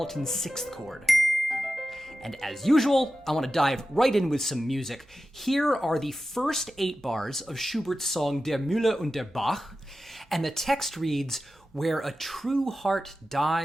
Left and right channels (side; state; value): both; normal; correlation 0.93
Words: sixth chord. And as usual, I want to dive right in with some music. Here are the first 8 bars of Schubert's song Der Müller und der Bach, and the text reads, "Where a true heart